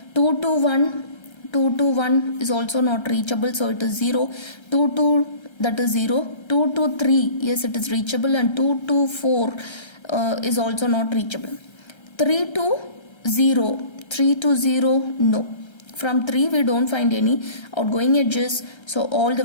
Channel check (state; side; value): late; right; 1.3 ms